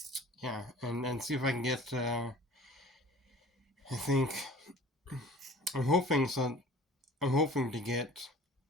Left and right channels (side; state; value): both; normal; correlation 0.46